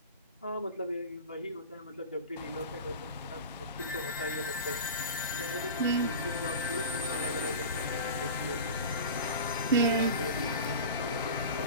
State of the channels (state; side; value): inverted; both; correlation -0.31